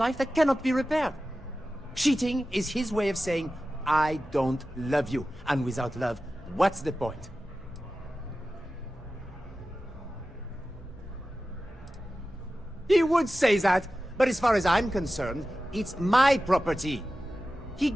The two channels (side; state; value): both; normal; correlation 0.94